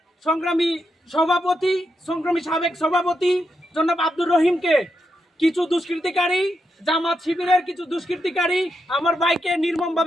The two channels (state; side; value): normal; both; correlation 0.83